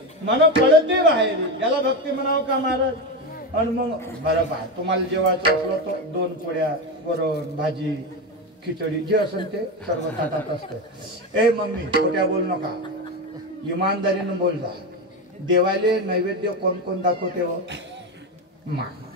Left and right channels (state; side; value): normal; both; correlation 0.16